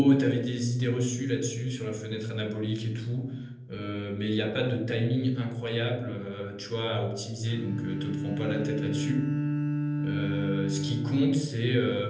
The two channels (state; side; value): identical; both; correlation 1.00